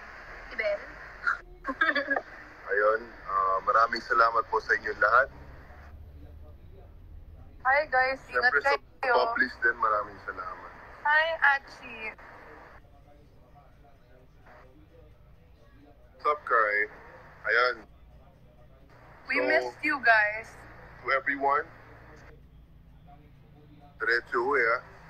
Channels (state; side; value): identical; both; correlation 1.00